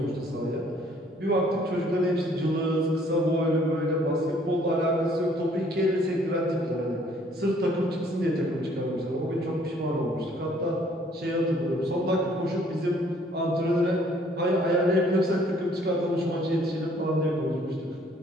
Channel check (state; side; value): normal; both; correlation 0.60